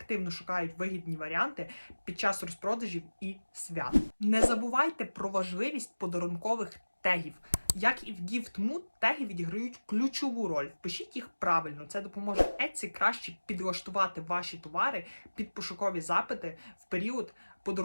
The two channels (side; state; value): both; inverted; correlation -1.00